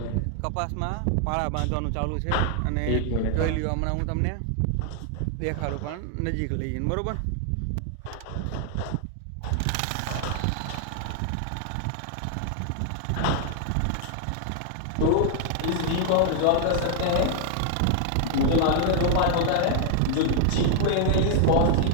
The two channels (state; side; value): different; both; correlation 0.00